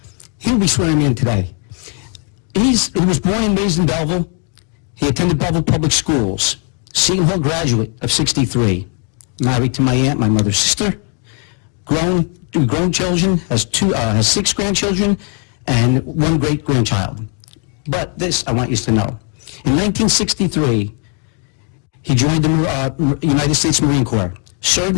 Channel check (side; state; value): right; quieter; 39.8 dB